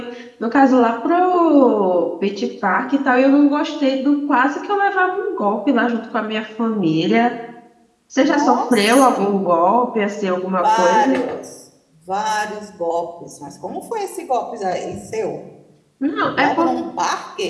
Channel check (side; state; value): both; identical; correlation 1.00